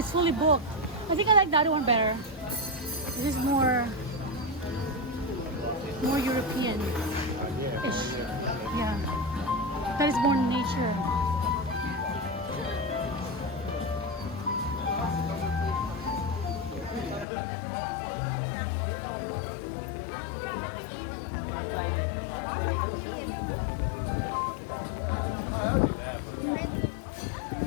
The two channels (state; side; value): drops out; right; at 17.2 s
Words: fully booked. I think I like the other one better. This is more European-ish. Yeah. That is more nature.